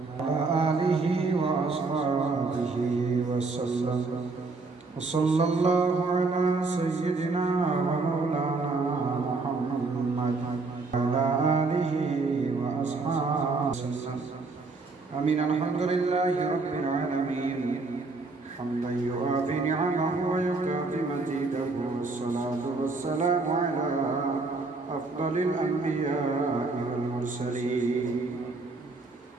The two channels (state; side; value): quieter; left; 3.8 dB